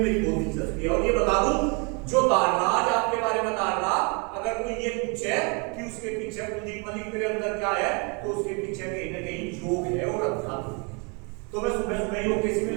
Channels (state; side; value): quieter; left; 33.5 dB